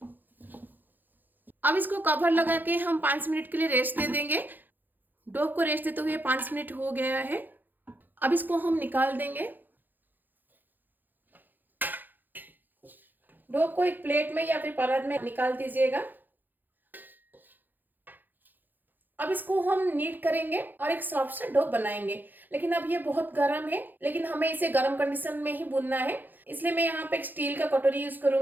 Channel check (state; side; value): late; left; 0.088 ms